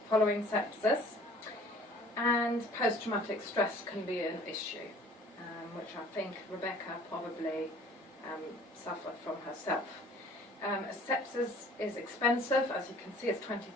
following sepsis, and post-traumatic stress can be an issue, which I think Rebecca probably suffered from herself. Sepsis is expensive. As you can see, it's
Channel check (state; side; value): normal; both; correlation 0.52